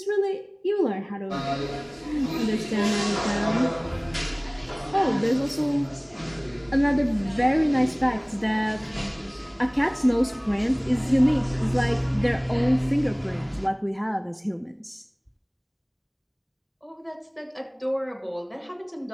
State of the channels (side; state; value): both; identical; correlation 1.00